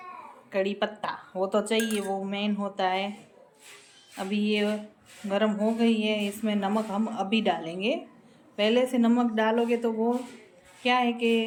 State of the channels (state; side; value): identical; both; correlation 1.00